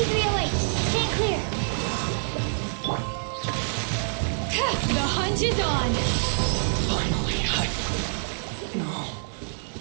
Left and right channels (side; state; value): left; silent; 61 dB below the other